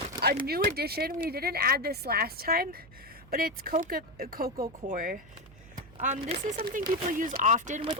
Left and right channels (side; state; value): right; noise; hum, 22 dB below the sound